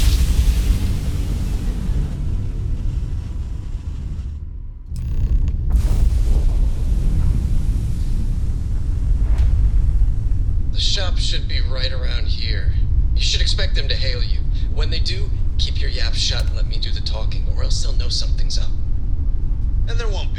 The shop should be right around here. You should expect them to hail you. When they do, keep your yap shut and let me do the talking, or else they'll know something's up. And there won't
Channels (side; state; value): both; identical; correlation 1.00